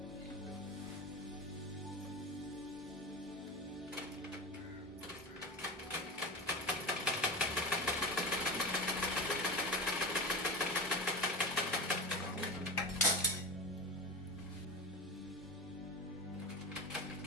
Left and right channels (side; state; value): both; normal; correlation 0.24